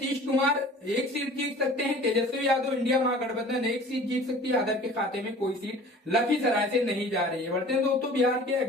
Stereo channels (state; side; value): normal; both; correlation 0.45